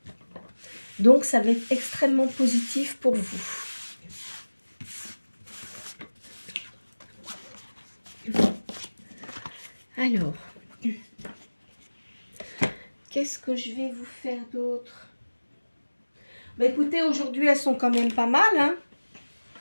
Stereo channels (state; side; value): inverted; both; correlation -1.00